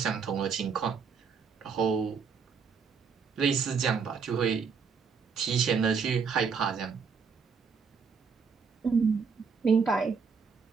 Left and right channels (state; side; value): quieter; left; 5.7 dB